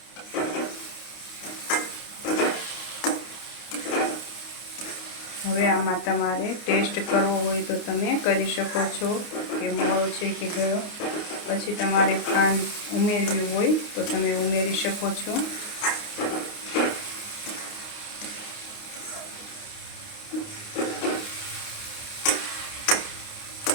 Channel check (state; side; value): late; right; 29 ms